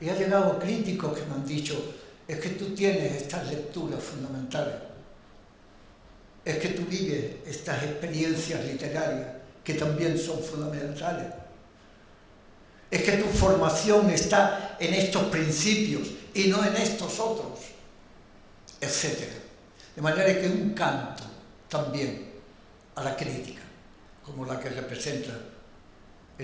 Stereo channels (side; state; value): both; identical; correlation 1.00